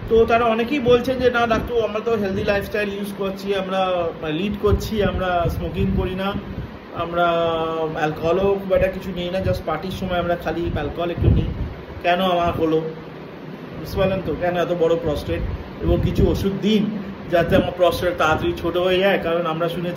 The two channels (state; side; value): identical; both; correlation 1.00